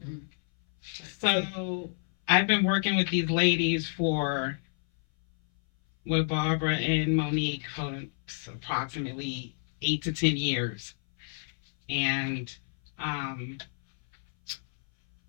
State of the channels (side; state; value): right; silent; 58 dB below the other